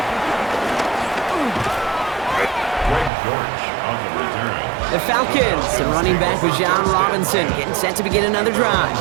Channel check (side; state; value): left; drops out; at 3.1 s